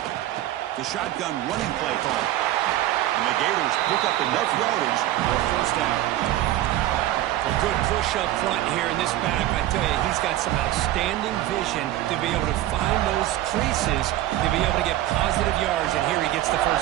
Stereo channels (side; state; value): left; quieter; 14.3 dB